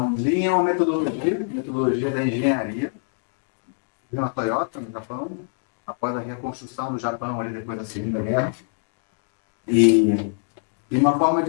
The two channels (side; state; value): right; silent; digital silence